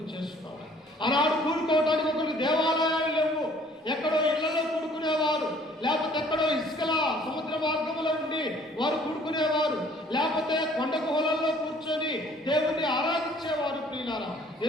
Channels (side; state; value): both; normal; correlation 0.57